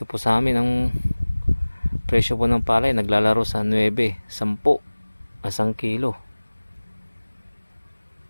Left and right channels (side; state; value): both; inverted; correlation -1.00